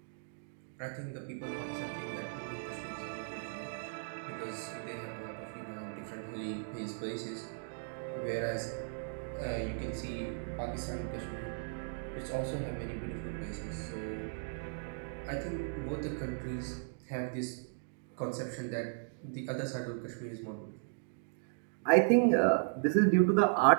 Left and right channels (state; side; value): silent; left; digital silence